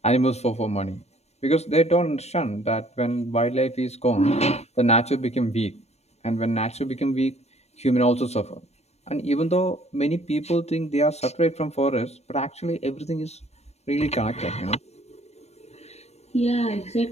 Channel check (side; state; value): right; late; 0.31 ms